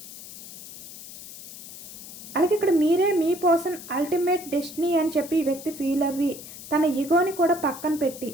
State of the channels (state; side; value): noise; left; hiss, 14 dB below the sound